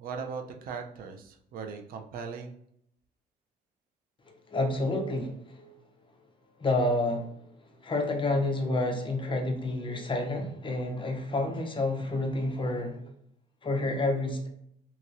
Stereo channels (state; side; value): normal; both; correlation 0.57